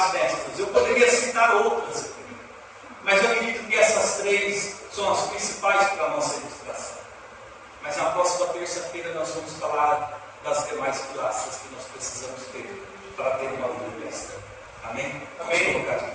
mestras. Eu poderia citar outras aqui, mas eu acredito que essa são as principais para a nossa ilustração. Mas na próxima terça-feira nós vamos falar das demais pilares que nós precisamos ter para ter uma vida cristã. Amém?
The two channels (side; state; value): both; identical; correlation 1.00